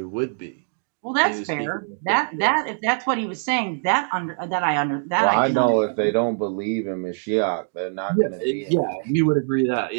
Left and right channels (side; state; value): left; silent; digital silence